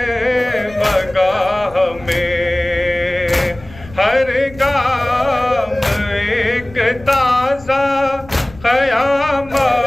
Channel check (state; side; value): noise; left; rumble, 20 dB below the sound